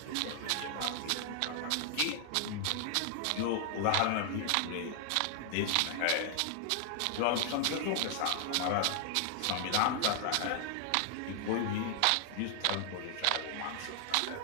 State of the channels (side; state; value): both; different; correlation 0.00